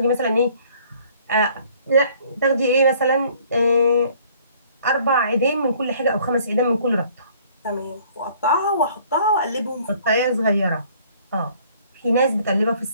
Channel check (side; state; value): both; inverted; correlation -0.57